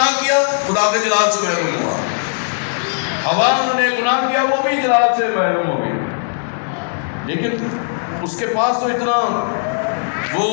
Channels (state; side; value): silent; right; digital silence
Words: کیا، خدا کے جلال سے محروم ہوا. ہوا نے گناہ کیا، وہ بھی جلال سے محروم ہو گئی. لیکن اس کے پاس تو اتنا وہ